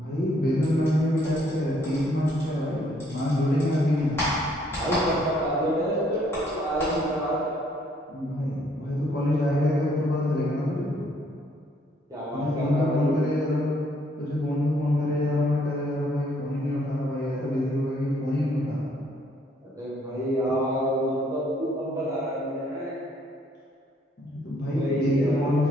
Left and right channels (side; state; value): both; normal; correlation 0.66